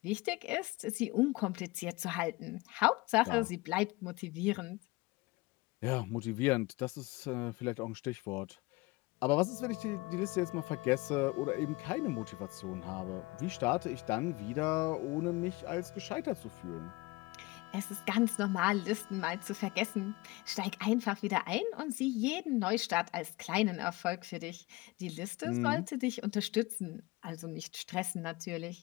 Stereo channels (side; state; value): right; quieter; 22.2 dB